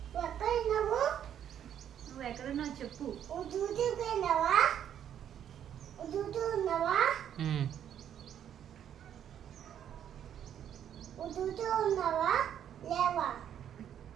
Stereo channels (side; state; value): left; quieter; 9.7 dB